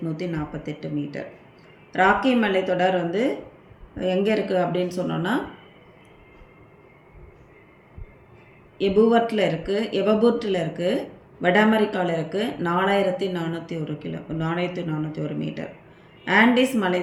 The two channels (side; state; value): both; identical; correlation 1.00